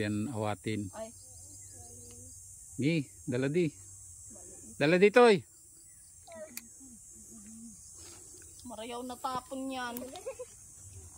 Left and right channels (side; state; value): both; identical; correlation 1.00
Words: awatin. Ay. Gi, dala di. Dala dito eh. Marayaw na tapon yan.